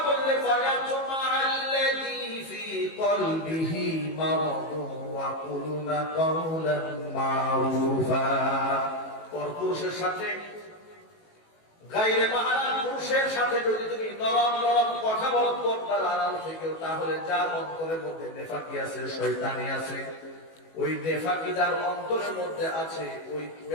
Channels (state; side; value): late; right; 18 ms